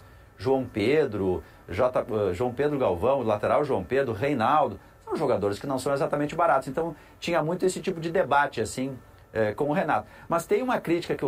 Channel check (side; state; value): both; identical; correlation 1.00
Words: João Pedro Galvão, lateral João Pedro, Reinaldo. São jogadores que não são exatamente baratos. Então tinha muito esse tipo de debate, assim, com o Renato. Mas tem uma crítica que o